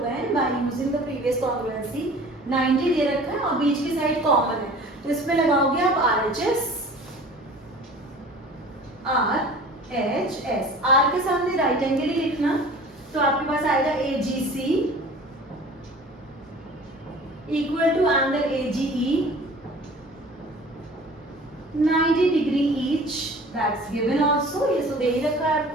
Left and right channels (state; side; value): normal; both; correlation 0.44